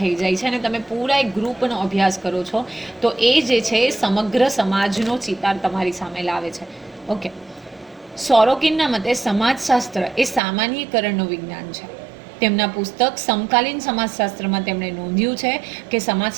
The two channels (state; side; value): drops out; left; at 10.4 s